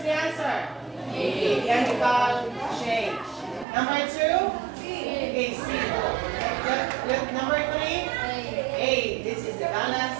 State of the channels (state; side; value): drops out; left; at 3.7 s